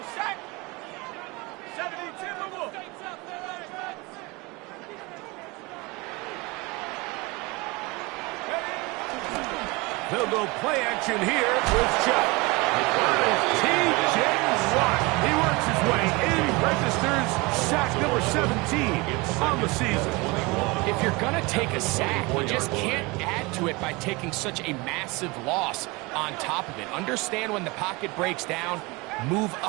sack. 72 move. They'll go play action here with Chuck. T.J. Watt. He works his way in, registers sack number 17 on the season. If you're going to take a sack, you just can't add to it by taking such a massive loss on top of it. Understand when the pocket breaks down, move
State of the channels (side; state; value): left; quieter; 25.2 dB